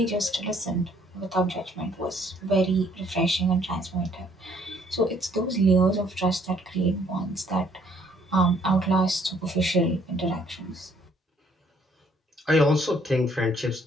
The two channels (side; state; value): both; normal; correlation 0.63